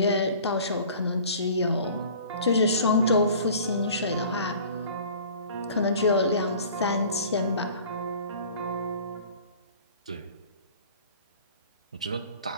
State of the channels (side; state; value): both; inverted; correlation -0.46